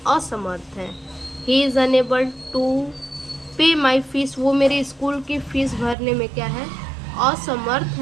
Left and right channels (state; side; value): drops out; left; at 6.0 s